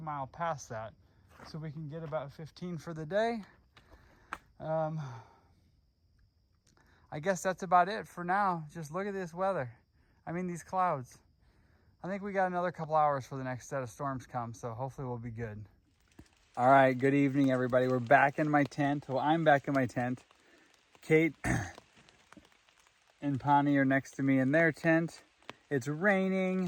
mile past that so we can get about 15 for the day. I guess that's about it for now. Just look at this weather. I mean, these clouds. I think we got another couple hours for the next set of storms come, so hopefully we'll be good. All right, good evening, everybody. We're back in my tent. Well, I'm back in my tent. Kate and Pani are next to me in their tent. It's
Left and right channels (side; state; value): both; identical; correlation 1.00